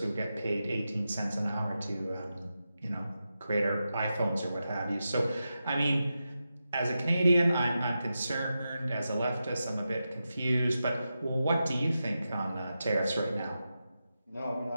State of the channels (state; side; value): inverted; both; correlation -0.90